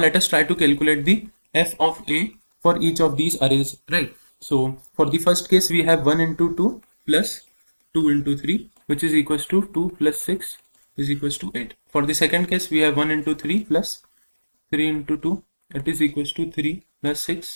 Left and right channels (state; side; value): inverted; both; correlation -1.00